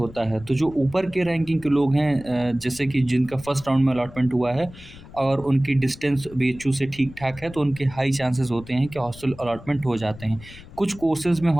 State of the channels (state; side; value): noise; left; rumble, 18 dB below the sound